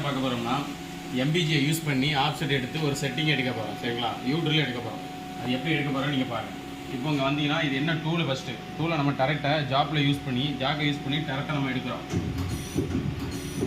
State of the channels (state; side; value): identical; both; correlation 1.00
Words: பார்க்க போகிறோம்னா எம்பிஜியை யூஸ் பண்ணி ஆப்செட் எடுத்து ஒரு செட்டிங் எடுக்க போகிறோம். சரிங்களா, யூட்ரில் எடுக்க போகிறோம். அது எப்படி எடுக்க போகிறோம் நீங்கள் பாருங்கள். இப்போ இங்கே வந்தீங்கன்னா இது என்ன டூலு, ஃபஸ்ட்டு டூலை நம்ம டரெக்டை ஜாப்பில் யூஸ் பண்ணி டரெக்டாக நம்ம எடுக்கிறோம்.